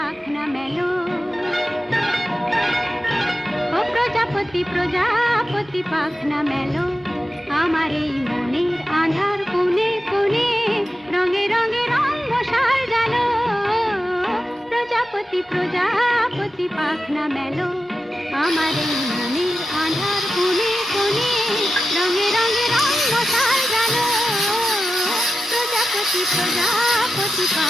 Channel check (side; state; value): both; normal; correlation 0.92